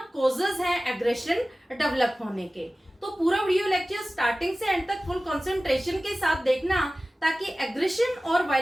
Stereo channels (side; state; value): both; normal; correlation 0.97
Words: कॉजेज हैं एग्रेशन डेवलप होने के। तो पूरा वीडियो लेक्चर स्टार्टिंग से एंड तक फुल कंसंट्रेशन के साथ देखना, ताकि एग्रेशन और